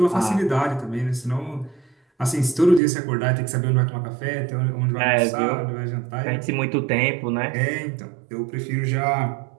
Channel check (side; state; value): left; drops out; at 2.8 s